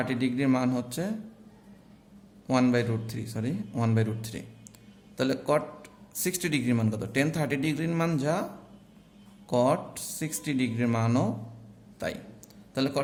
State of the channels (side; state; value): both; identical; correlation 1.00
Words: ডিগ্রির মান হচ্ছে 1/√3 তাহলে কট 60 ডিগ্রির মান কত? টেন 30 ডিগ্রির মান যা, কট 60 ডিগ্রির মানও তাই। তাহলে